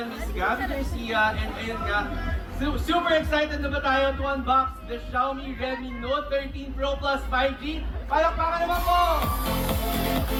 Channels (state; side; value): identical; both; correlation 1.00